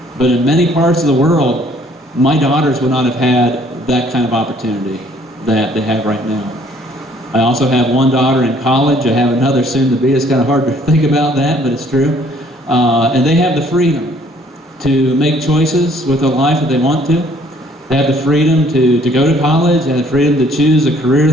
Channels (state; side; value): normal; both; correlation 0.61